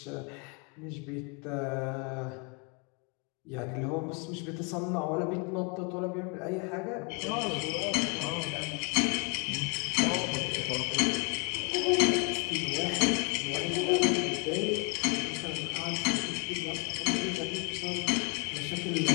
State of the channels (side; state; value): right; quieter; 33.7 dB